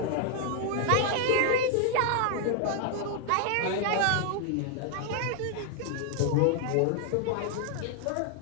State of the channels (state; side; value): different; both; correlation 0.00